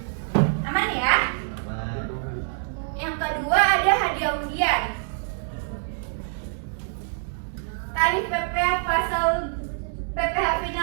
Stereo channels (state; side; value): silent; left; digital silence